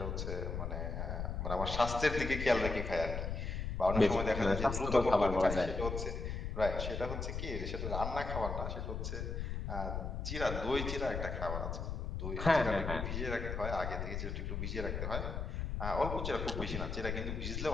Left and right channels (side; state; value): left; noise; rumble, 3 dB below the sound